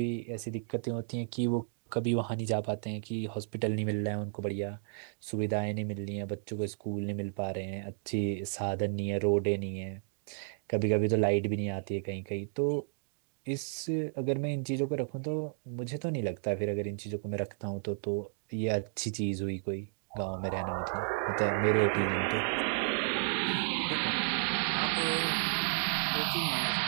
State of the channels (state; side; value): silent; left; digital silence